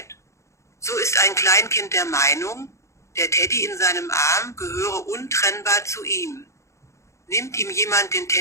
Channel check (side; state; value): right; late; 0.14 ms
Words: So ist ein Kleinkind der Meinung, der Teddy in seinem Arm gehöre untrennbar zu ihm. Nimmt ihm jemand den